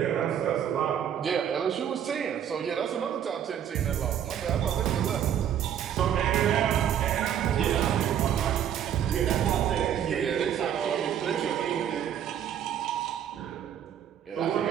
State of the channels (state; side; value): quieter; left; 9.5 dB